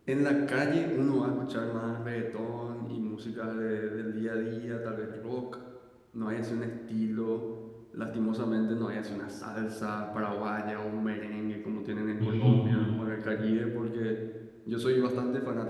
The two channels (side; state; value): both; identical; correlation 1.00